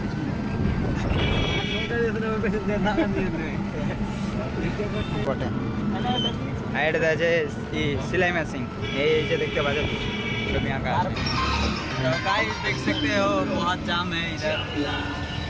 পিছনে। আর এটা আছে सिलाई मशीन, এই যে দেখতে পাচ্ছ ছবি আঁকা আছে। तो गाइस देख सकते हो बहुत जाम है इधर।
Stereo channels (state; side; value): identical; both; correlation 1.00